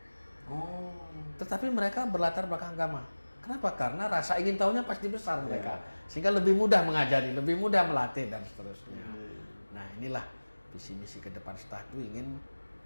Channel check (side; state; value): both; inverted; correlation -1.00